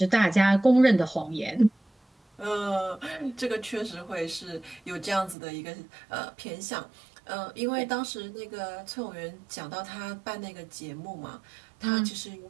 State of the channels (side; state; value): left; drops out; at 5.4 s